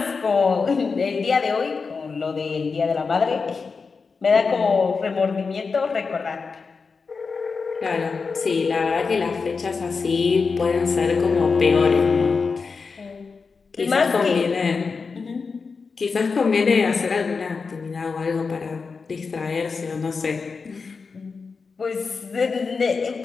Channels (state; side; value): quieter; right; 4.9 dB